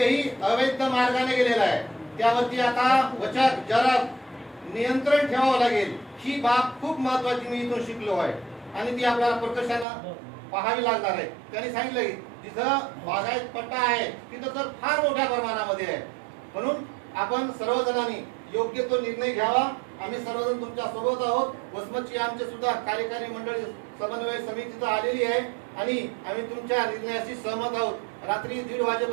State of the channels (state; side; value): drops out; left; at 9.9 s